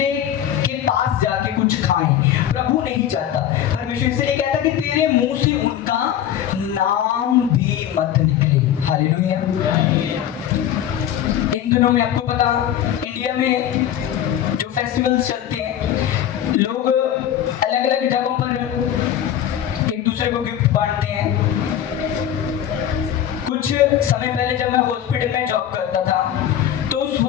के पास जाके कुछ खाएं। प्रभु नहीं चाहता। परमेश्वर इसलिए कहता कि तेरे मुंह से उनका नाम भी मत निकले। हालेलुया। इन दिनों में आपको पता, इंडिया में जो फेस्टिवल्स चलते हैं, लोग अलग अलग जगहों पर एक दूसरे को गिफ्ट बांटते हैं। कुछ समय पहले जब मैं हॉस्पिटल में जॉब करता था तो उस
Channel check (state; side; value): quieter; right; 10.6 dB